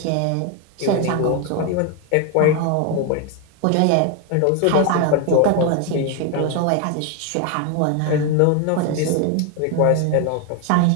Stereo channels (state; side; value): different; both; correlation 0.01